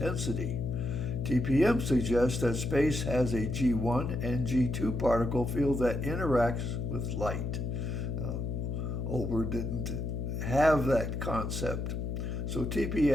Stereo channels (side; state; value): left; noise; hum, 2 dB below the sound